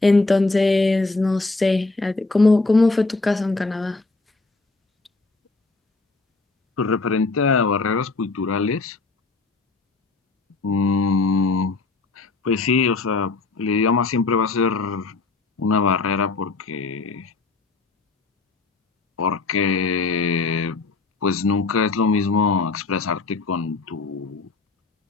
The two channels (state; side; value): quieter; right; 3.7 dB